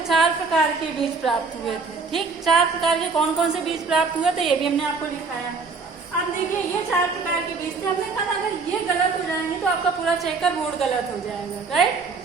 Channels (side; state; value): left; quieter; 4.5 dB